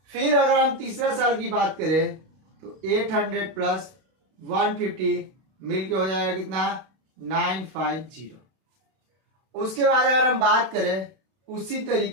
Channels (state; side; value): late; left; 32 ms